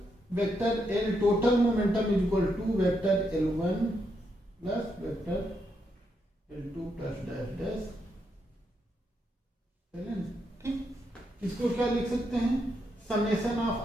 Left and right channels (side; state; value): both; normal; correlation 0.80